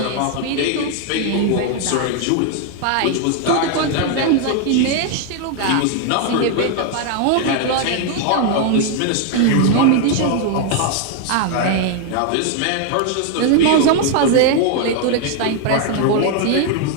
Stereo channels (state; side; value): different; both; correlation 0.00